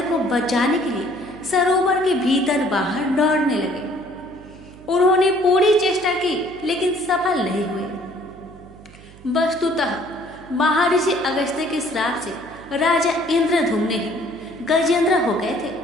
को बचाने के लिए सरोवर के भीतर बाहर दौड़ने लगे। उन्होंने पूरी चेष्टा की, लेकिन सफल नहीं हुए। वस्तुतः महर्षि अगस्त्य के श्राप से राजा इंद्रधुम्न ही गजेंद्र हो गए थे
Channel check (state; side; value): noise; right; hum, 21 dB below the sound